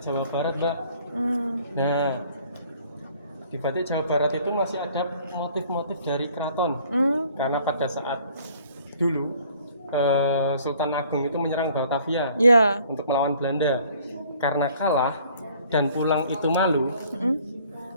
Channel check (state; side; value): inverted; both; correlation -0.57